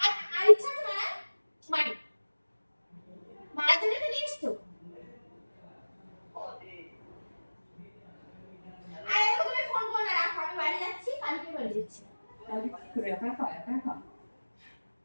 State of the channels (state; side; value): inverted; both; correlation -1.00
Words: আর ইচ্ছা আছে না? মারি। মারার জন্য তো নিয়ে এসছো। আর এখন তুমি ফোন করো না, রাখো, আমি বাড়ি যাচ্ছি, কালকে বাড়ি যাচ্ছি। তাহলে কি করে একা একা একা একা?